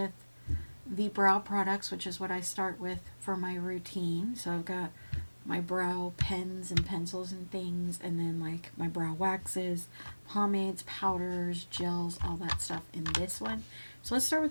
the brow products, which is what I start with for my routine. So I've got my brow pens and pencils and things, and then like my brow waxes, pomades, powders, gels, all that stuff in this one. So let's start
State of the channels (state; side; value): inverted; both; correlation -1.00